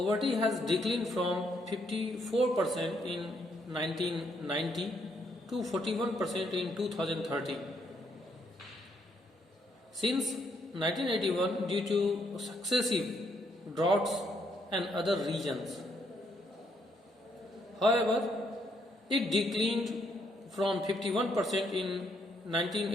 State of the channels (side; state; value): both; normal; correlation 0.72